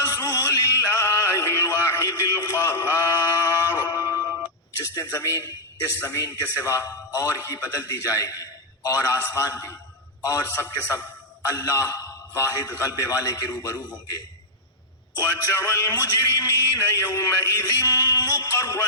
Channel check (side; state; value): both; normal; correlation -0.06